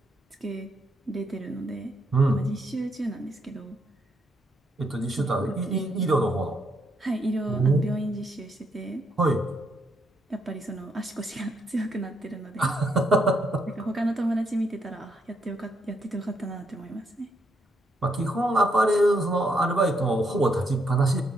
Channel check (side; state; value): both; normal; correlation 0.75